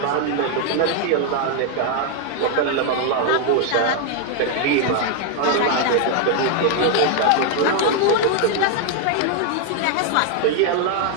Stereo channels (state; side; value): different; both; correlation 0.00